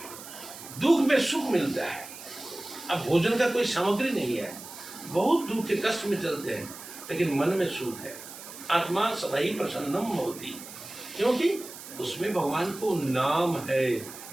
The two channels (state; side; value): noise; right; hiss, 14 dB below the sound